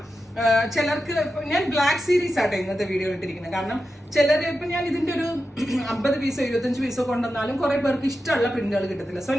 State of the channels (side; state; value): both; normal; correlation 0.90